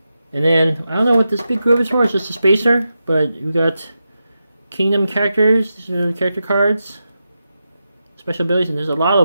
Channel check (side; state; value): both; inverted; correlation -0.89